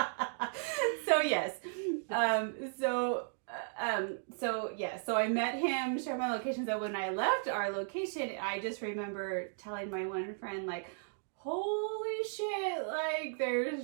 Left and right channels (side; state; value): left; silent; digital silence